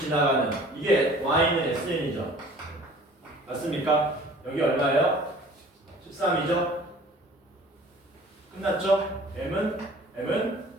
이게 y는 sn이죠. 맞습니까? 여기 얼마예요? 13이죠? 끝났죠? m은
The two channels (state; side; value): normal; both; correlation 0.48